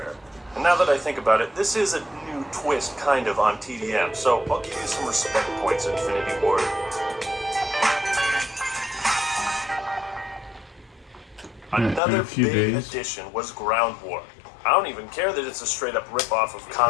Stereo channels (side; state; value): right; drops out; at 12.0 s